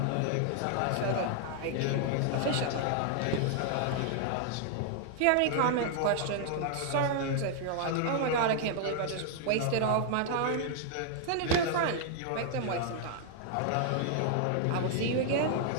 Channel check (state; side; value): different; both; correlation 0.00